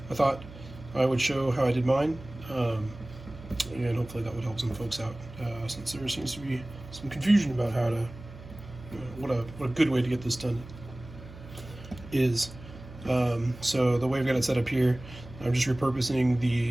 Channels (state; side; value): noise; right; hum, 16 dB below the sound